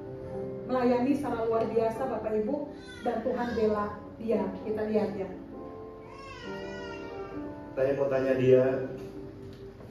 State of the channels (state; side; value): identical; both; correlation 1.00